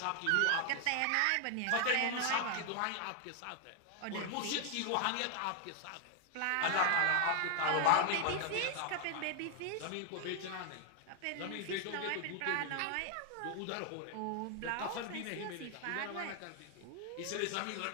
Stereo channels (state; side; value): different; both; correlation 0.00